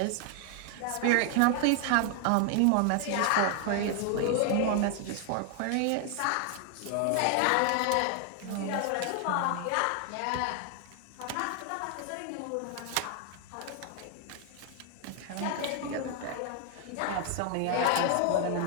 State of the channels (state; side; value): different; both; correlation 0.00